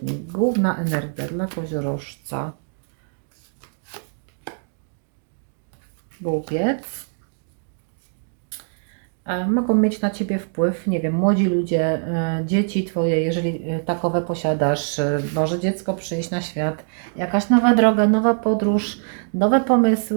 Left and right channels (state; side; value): silent; left; digital silence